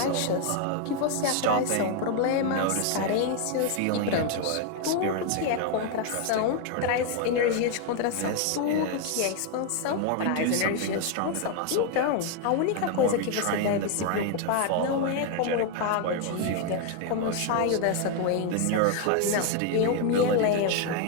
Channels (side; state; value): both; different; correlation 0.01